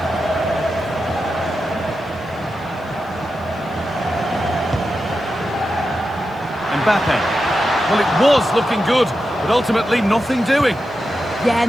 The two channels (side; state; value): left; noise; hiss, 30 dB below the sound